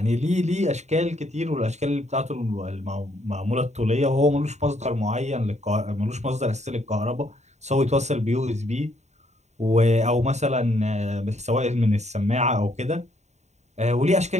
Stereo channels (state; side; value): late; left; 0.33 ms